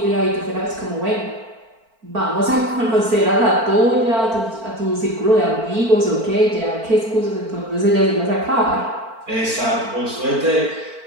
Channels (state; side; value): late; left; 4.4 ms